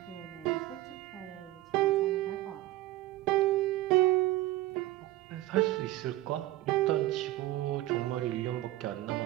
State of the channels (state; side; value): quieter; left; 16.5 dB